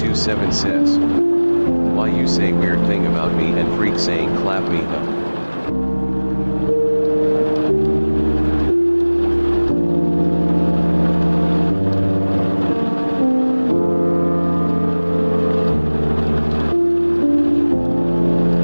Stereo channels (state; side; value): inverted; both; correlation -1.00